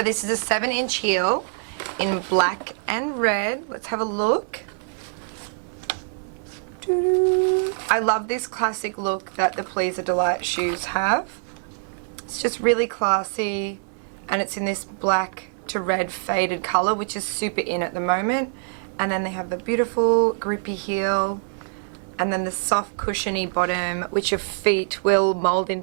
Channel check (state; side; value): silent; left; 62 dB below the other